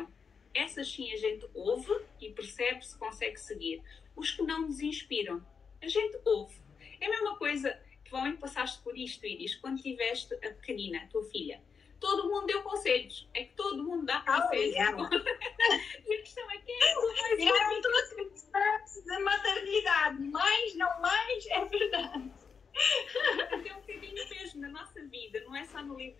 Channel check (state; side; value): quieter; right; 5.9 dB